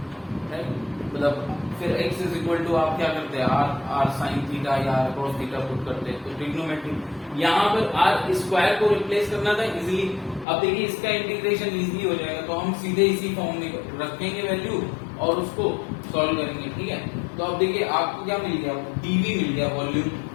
मतलब फिर x इज इक्वल टू आप क्या करते हैं आर साइन थीटा या आर कॉस थीटा पुट करते हैं, तो ट्रिग्नोमेट्री। यहाँ पर आर स्क्वायर को रिप्लेस करना था इजीली। अब देखिए इसका इंटीग्रेशन इजीली हो जाएगा, तो हम सीधे इसी फॉर्म में रखेंगे वैल्यू और उसको सॉल्व करेंगे, ठीक है। तो अब देखिए आपको क्या मिल गया, डीवी मिल गया वॉल्यूम,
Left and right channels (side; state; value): right; drops out; at 10.5 s